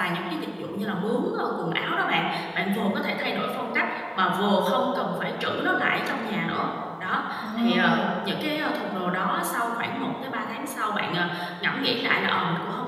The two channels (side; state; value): both; identical; correlation 1.00